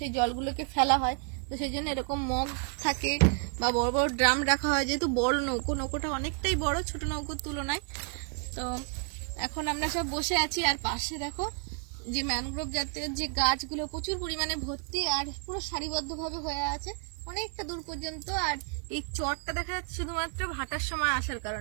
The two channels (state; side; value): quieter; left; 39.7 dB